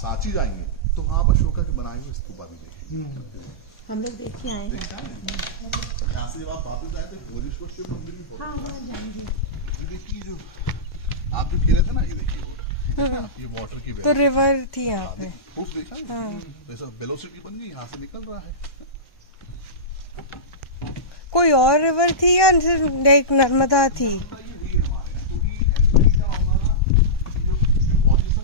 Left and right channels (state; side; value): late; right; 1.1 ms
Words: जाएंगे तो वहां आप अशोका के बनाए हुए स्तूपा भी देखेंगे। हम लोग देख के आएंगे। यहाँ से जब आप वापस जाए थे भोजेश्वर शिव मंदिर भी बहुत, हाँ वहाँ जाएंगे। ये देखिए जो आप जो खेले थे ना, ये देखिए रोड, ये वाटर की तो रिवर थी यहाँ पे, खूब देखा है, जैसे वेलोसिटी बन गई, यहाँ से निकल रहा है। कोई और रिवर थी या सिर्फ लाइक नर्मदा थी? ये हुई है हमारे यहाँ, क्योंकि एक्चुअली क्या होगा ना, जो पोजीशन